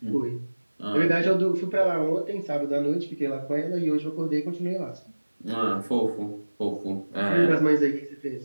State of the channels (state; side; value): inverted; both; correlation -1.00